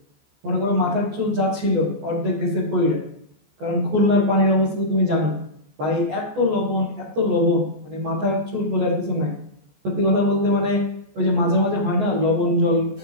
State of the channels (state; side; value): late; left; 14 ms